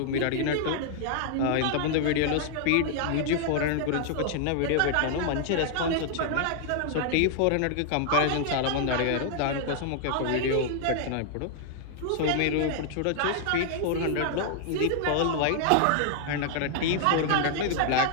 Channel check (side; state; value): both; different; correlation 0.00